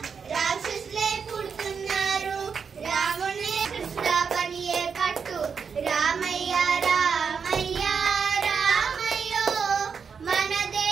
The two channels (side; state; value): left; quieter; 6.1 dB